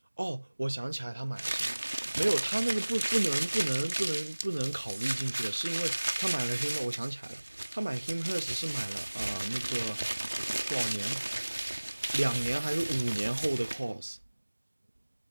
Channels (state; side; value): inverted; both; correlation -1.00